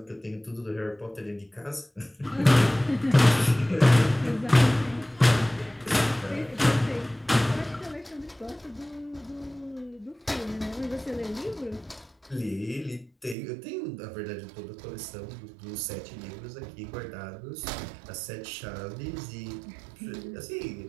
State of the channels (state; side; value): drops out; left; at 13.4 s